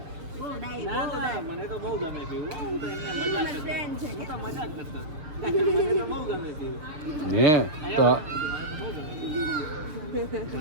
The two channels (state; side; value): late; left; 7.0 ms